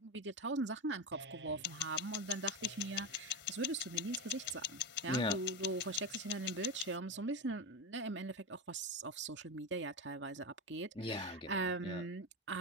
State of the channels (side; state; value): both; normal; correlation 0.16